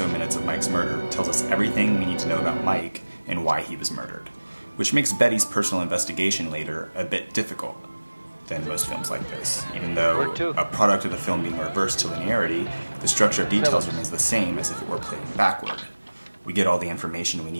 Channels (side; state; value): both; inverted; correlation -1.00